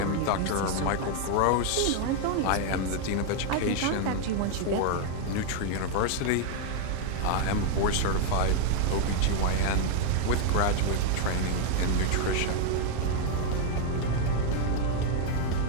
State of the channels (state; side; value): different; both; correlation 0.00